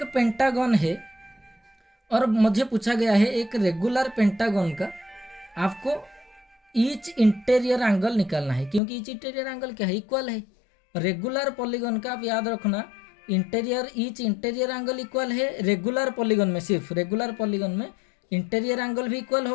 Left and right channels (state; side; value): drops out; right; at 8.8 s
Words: पेंटागन है और मुझे पूछा गया है एक रेगुलर पेंटागन का आपको ईच इंटीरियर एंगल निकालना है, क्योंकि ईच इंटीरियर एंगल क्या है, इक्वल है। रेगुलर पॉलीगन का आप याद रखना, ईच इंटीरियर एंगल इक्वल है। रेगुलर पॉलीगन में, सिर्फ रेगुलर पॉलीगन में इंटीरियर एंगल भी इक्वल